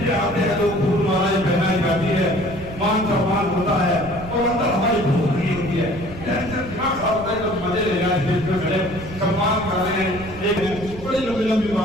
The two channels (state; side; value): noise; right; rumble, 14 dB below the sound